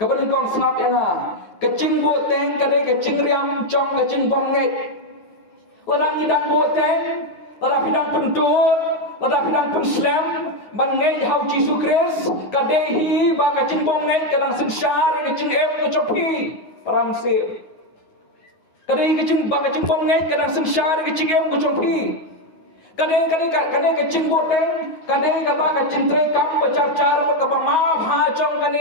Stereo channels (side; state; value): right; late; 9.4 ms